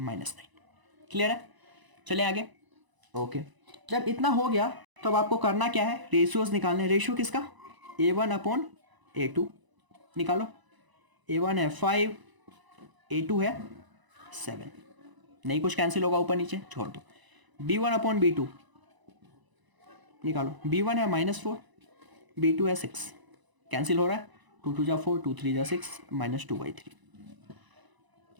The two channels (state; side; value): late; left; 1.0 ms